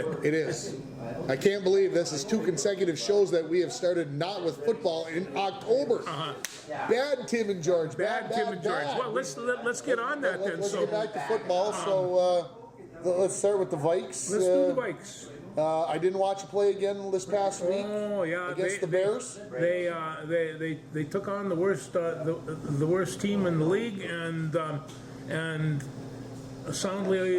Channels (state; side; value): identical; both; correlation 1.00